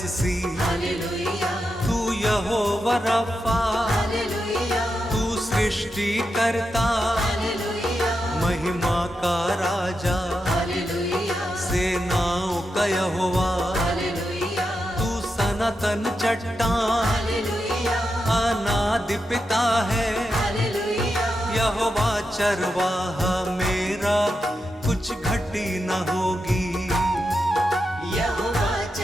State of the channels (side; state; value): both; normal; correlation 0.87